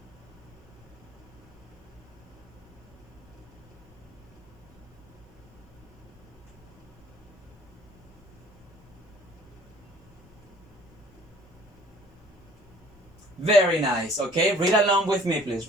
Very nice. Okay, read along with me, please.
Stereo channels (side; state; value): left; noise; rumble, 27 dB below the sound